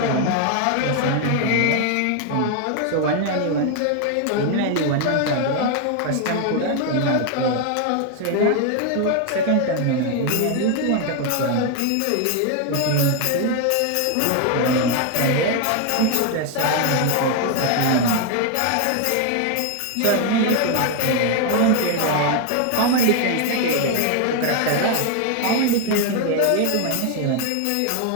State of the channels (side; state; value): both; different; correlation 0.01